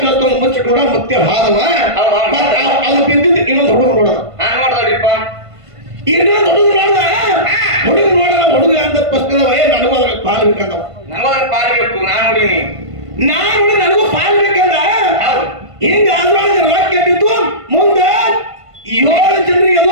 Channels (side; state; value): left; late; 1.5 ms